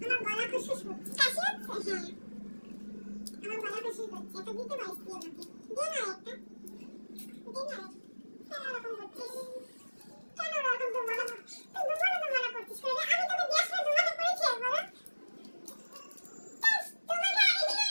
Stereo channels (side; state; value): both; inverted; correlation -1.00